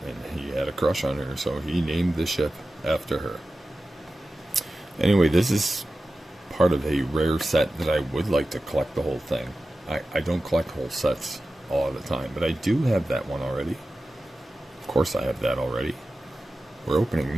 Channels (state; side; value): normal; both; correlation 0.94